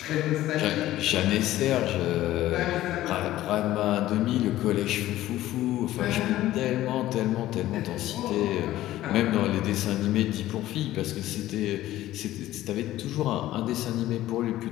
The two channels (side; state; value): right; quieter; 14.8 dB